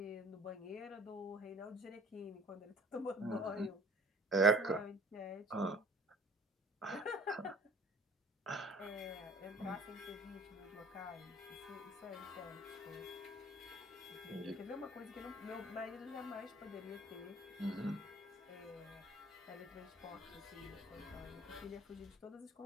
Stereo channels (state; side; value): normal; both; correlation 0.51